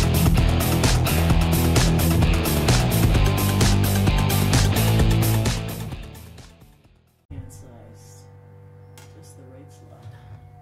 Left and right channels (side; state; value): both; identical; correlation 1.00